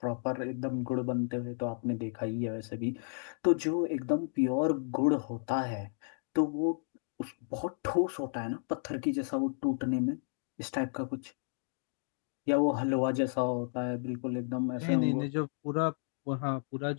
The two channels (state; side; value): silent; right; digital silence